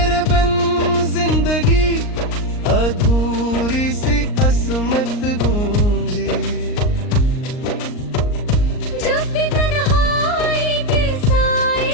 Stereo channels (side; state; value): right; late; 39 ms